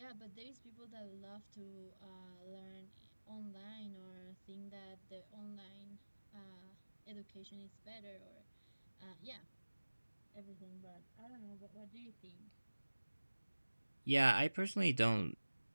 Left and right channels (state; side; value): inverted; both; correlation -1.00